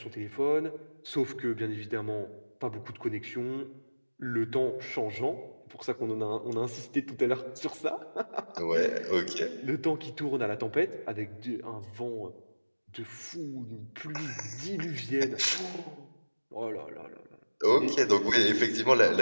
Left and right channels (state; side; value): inverted; both; correlation -1.00